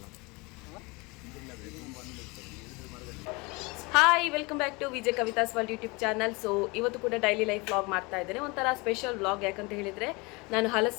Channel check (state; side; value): quieter; right; 26.5 dB